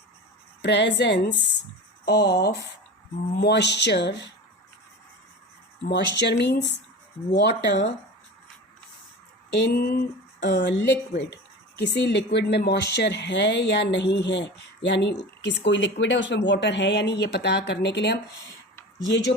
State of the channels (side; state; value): both; normal; correlation 0.32